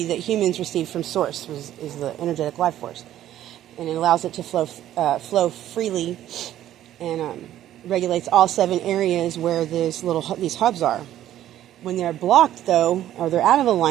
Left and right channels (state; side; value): quieter; left; 12.4 dB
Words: that humans receive from source, is the energetic life force. And it allows it to flow freely and regulates all 7 areas where these hubs are. When they're blocked, though, or they're out of